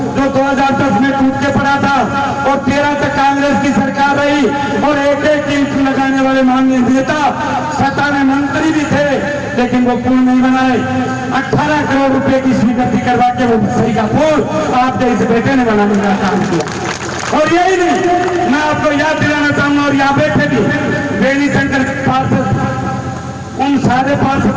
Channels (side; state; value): both; identical; correlation 1.00